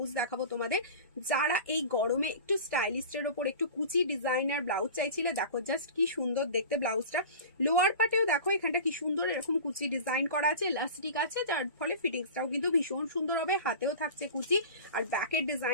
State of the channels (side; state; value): both; inverted; correlation -0.36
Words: দেখাবো তোমাদের। যারা এই গরমে একটু স্টাইলিস্টের ওপর একটু কুচি ডিজাইনার ব্লাউজ চাইছিলে, দেখো জাস্ট কি সুন্দর দেখতে ব্লাউজটা। লোয়ার পার্টেও দেখো এখানটা কি সুন্দর এরকম কুচি ডিজাইন করা আছে, ইলাস্টিক আছে, যার ফলে ফিটিংসটাও কিন্তু ভীষণ সুন্দর হবে। হাতেও থাকছে কুচি, আর ব্যাকের